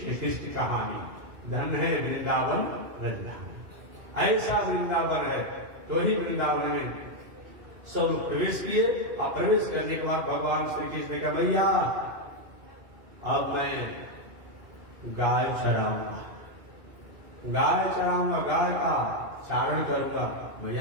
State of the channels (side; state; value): left; late; 2.6 ms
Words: कृष्ण कहानी। धन्य है वृंदावन रजधानी। ऐसा वृंदावन है। तो ही वृंदावन में सब लोग प्रवेश किए। और प्रवेश करने के बाद भगवान श्री कृष्ण ने कहा, भैया अब मैं गाय चराऊंगा, गाय का चारण करूंगा। भैया